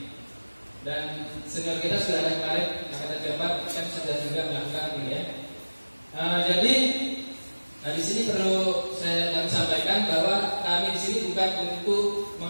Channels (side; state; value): both; inverted; correlation -1.00